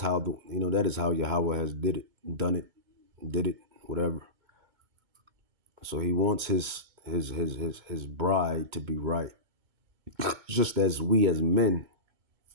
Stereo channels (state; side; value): late; left; 2.2 ms